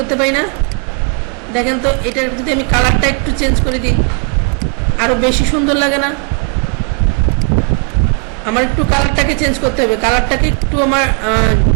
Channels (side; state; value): left; quieter; 38.7 dB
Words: পারি না? দেখেন তো এটার যদি আমি কালারটা একটু চেঞ্জ করে দিই আরো বেশি সুন্দর লাগে না? আমার একটু কালারটাকে চেঞ্জ করতে হবে, কালারটাকে একটু আমার